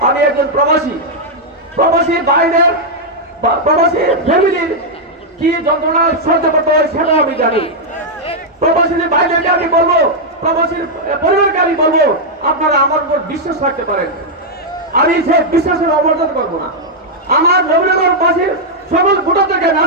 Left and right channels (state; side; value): normal; both; correlation -0.04